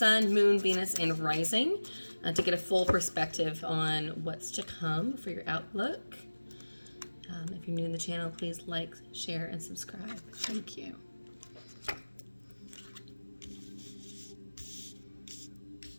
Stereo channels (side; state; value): both; inverted; correlation -1.00